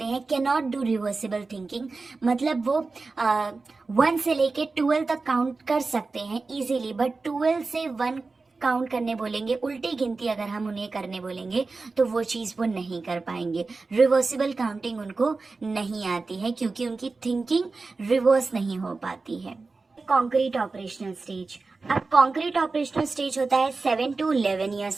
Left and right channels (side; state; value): left; quieter; 3.9 dB